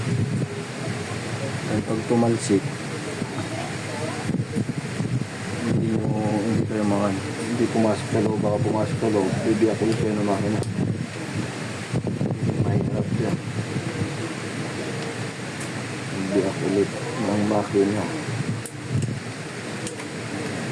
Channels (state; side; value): identical; both; correlation 1.00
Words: Ay, pag tumalsik, hindi kayo makan, hindi pumasok sa loob, baka pumasok sa loob, bibiyak ulit kayo ng makina. Mahirap yan, bibiyak ulit ng makina.